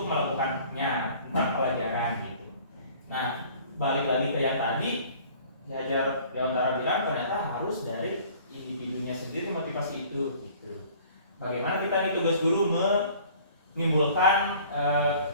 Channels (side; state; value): both; inverted; correlation -0.51